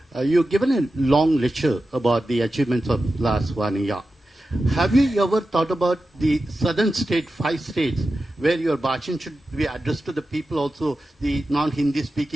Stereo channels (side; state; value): both; normal; correlation 0.92